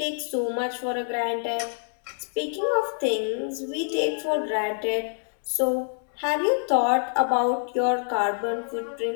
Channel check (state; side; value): silent; right; 61 dB below the other